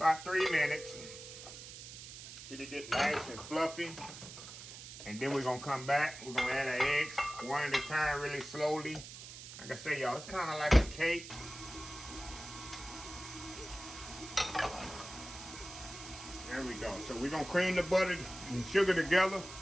3 minutes. Till it get nice and fluffy. And then we're gonna come back. We're gonna add our eggs one at a time, really slowly. Like I say, y'all, it's kind of like a cake. There we go. So we're gonna cream the butter and sugar together.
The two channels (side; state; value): right; noise; hiss, 13 dB below the sound